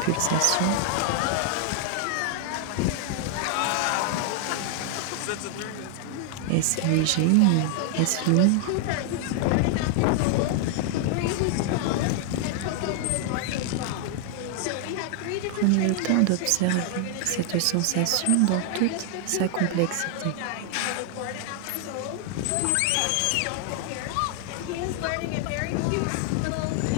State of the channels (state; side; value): different; both; correlation 0.00